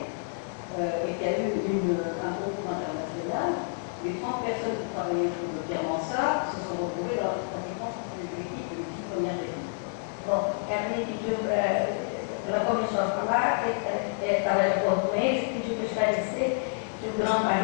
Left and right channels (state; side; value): silent; right; digital silence